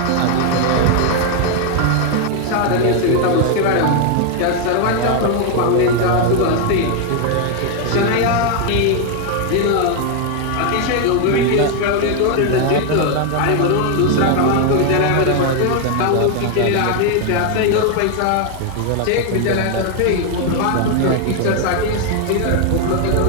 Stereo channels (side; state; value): both; different; correlation 0.01